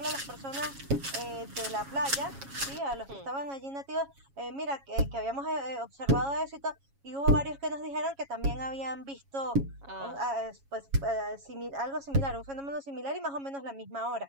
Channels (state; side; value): late; left; 7.3 ms